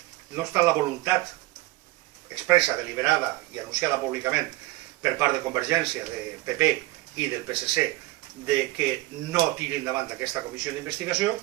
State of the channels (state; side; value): quieter; left; 19.3 dB